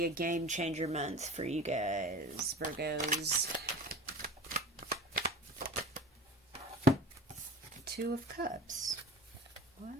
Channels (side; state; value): both; normal; correlation 0.36